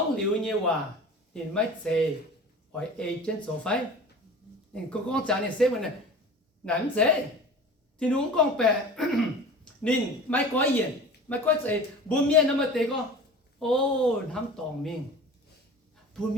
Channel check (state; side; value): normal; both; correlation 0.39